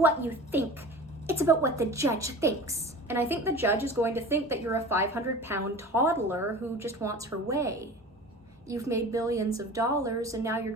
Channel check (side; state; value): both; normal; correlation 0.37